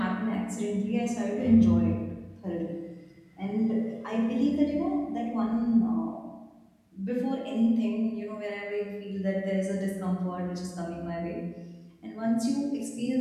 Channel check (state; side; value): identical; both; correlation 1.00